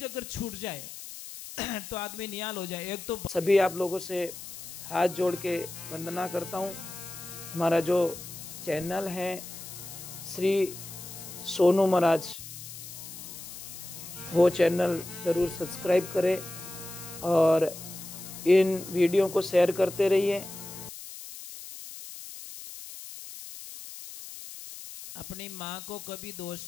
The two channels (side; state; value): left; noise; hiss, 12 dB below the sound